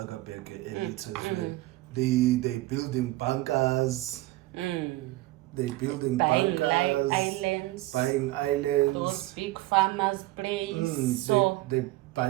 elite as well. They building bunkers. They building bunkers, buying islands, those big farmers' place. So they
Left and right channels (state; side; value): quieter; left; 18.6 dB